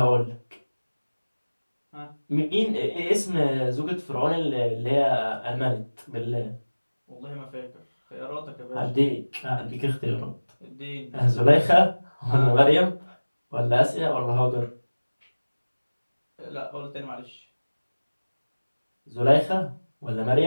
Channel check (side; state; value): both; inverted; correlation -1.00